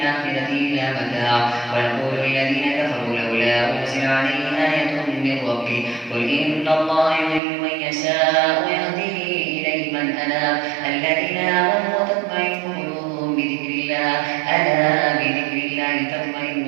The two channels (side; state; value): left; drops out; at 7.4 s